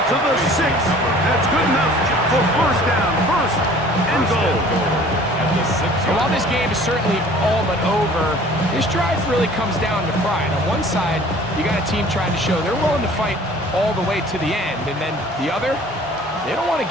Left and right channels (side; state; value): both; normal; correlation 0.50